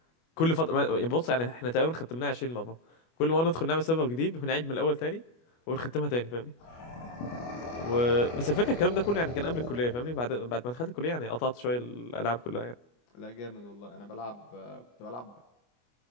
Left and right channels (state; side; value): late; right; 25 ms